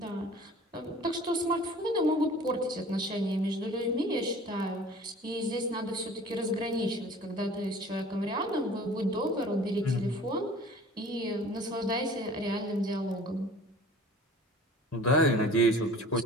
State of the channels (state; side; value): normal; both; correlation 0.46